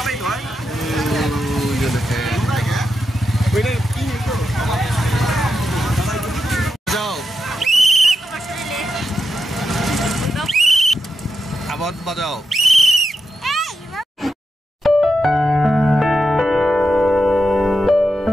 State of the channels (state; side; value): normal; both; correlation 0.87